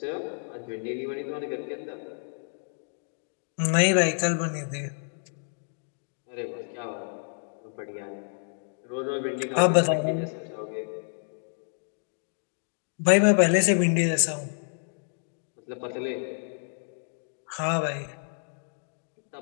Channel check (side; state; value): right; silent; digital silence